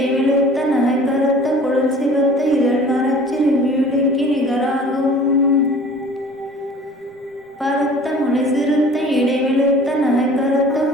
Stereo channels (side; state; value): both; normal; correlation 0.47